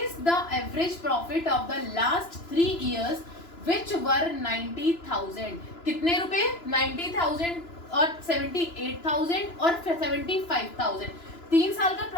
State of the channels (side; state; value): right; late; 2.9 ms